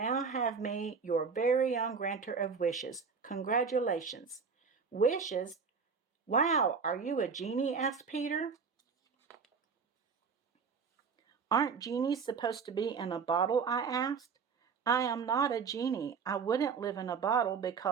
have me, your very own granter of wishes. Congratulations. Wishes? Wow, are you a genie? Asked Peter. Aren't genies supposed to be in a bottle? I asked. I am not a genie. I wouldn't live in a bottle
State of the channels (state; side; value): quieter; left; 5.6 dB